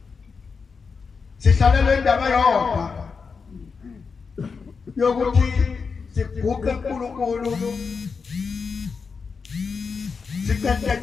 Sihlalela indaba yodwa. Yokuthi siguqe uNkulunkulu.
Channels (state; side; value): quieter; right; 5.2 dB